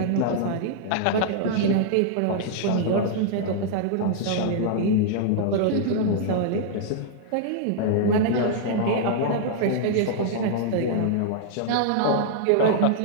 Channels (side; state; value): both; different; correlation -0.01